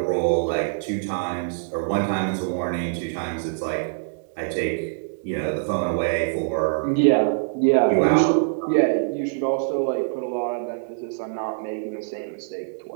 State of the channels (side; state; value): left; silent; digital silence